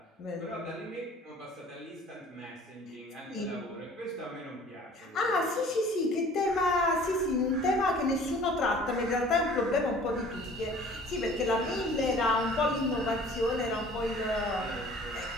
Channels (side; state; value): both; normal; correlation 0.49